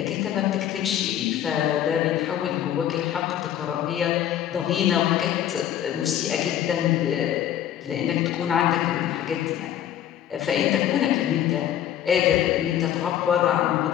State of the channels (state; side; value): quieter; right; 10.8 dB